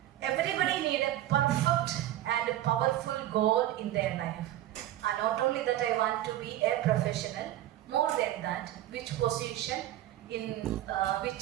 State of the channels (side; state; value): left; quieter; 13.7 dB